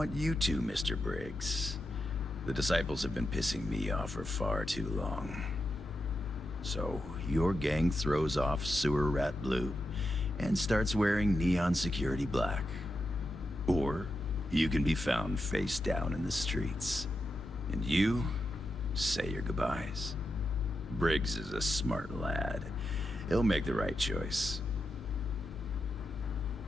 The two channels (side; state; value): both; normal; correlation 0.87